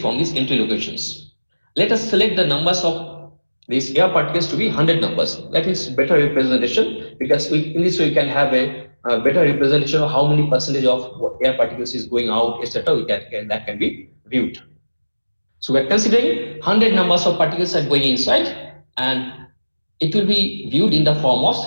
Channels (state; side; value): inverted; both; correlation -1.00